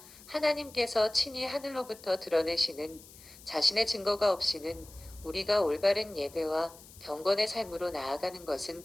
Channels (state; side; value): noise; left; hiss, 20 dB below the sound